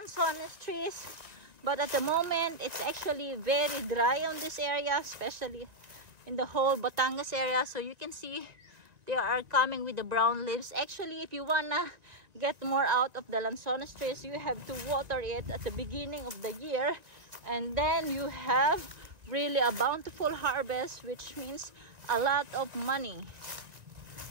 trees, but at the moment it's actually very dry on this area, especially in the whole Batangas area. So you can see they are coming with the brown leaves. Actually, if you wanna get more out of the lanzones trees, you have to water it at the beginning of the year, and then you have really a bountiful harvest, which means a lot of money.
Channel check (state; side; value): late; left; 1.9 ms